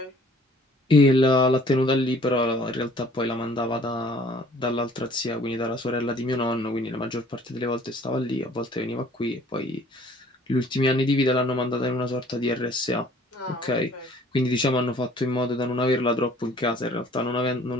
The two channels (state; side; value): normal; both; correlation 0.55